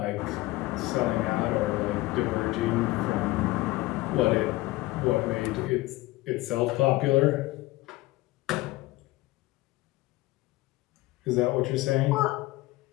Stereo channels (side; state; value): right; quieter; 19.3 dB